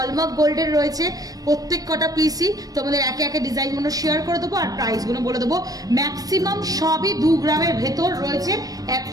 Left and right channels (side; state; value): left; late; 0.18 ms